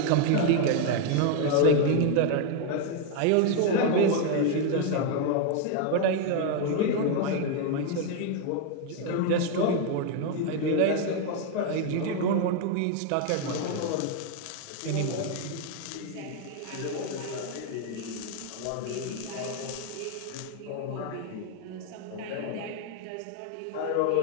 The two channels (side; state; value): both; different; correlation 0.01